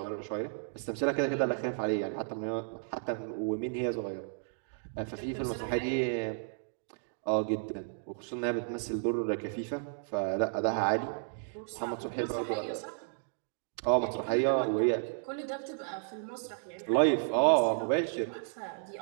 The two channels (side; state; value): left; silent; digital silence